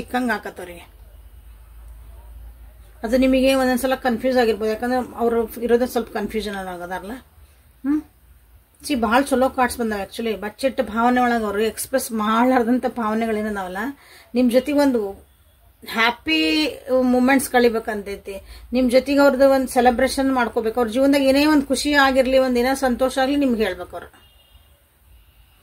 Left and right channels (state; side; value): identical; both; correlation 1.00